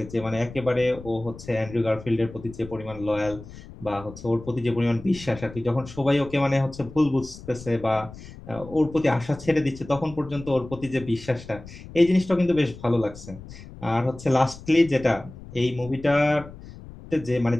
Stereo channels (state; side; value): noise; left; rumble, 16 dB below the sound